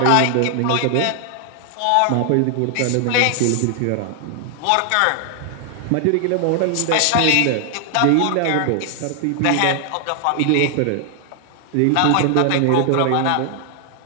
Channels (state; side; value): different; both; correlation 0.00